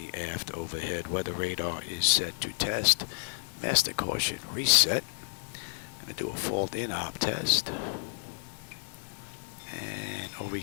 aft overhead. Weather radar is set to test. Master caution reset. Going to do a fault in op test. And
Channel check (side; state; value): right; silent; digital silence